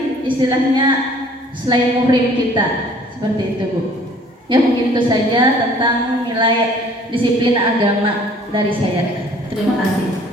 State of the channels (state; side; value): normal; both; correlation 0.54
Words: istilahnya selain muhrim kita, seperti itu Bu. Ya, mungkin itu saja tentang nilai disiplin agama dari saya. Terima kasih.